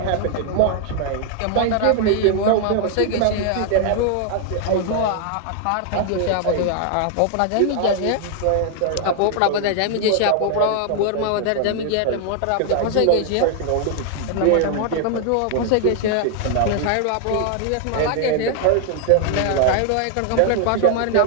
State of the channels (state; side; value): different; both; correlation 0.00